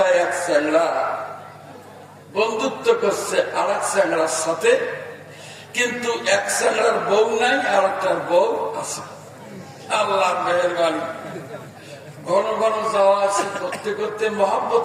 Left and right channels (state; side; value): identical; both; correlation 1.00